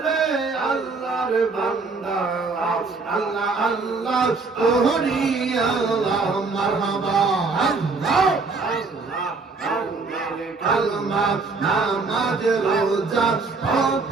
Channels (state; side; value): quieter; left; 4.2 dB